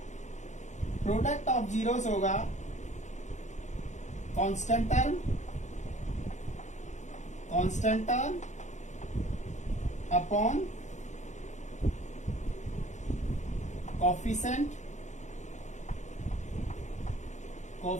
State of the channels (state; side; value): late; right; 0.34 ms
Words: zeros होगा constant term upon coefficient